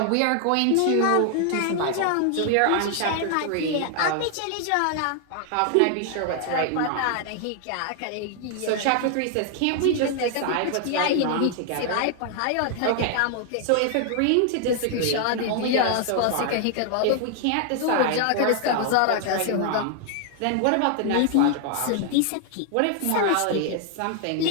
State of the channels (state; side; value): different; both; correlation 0.00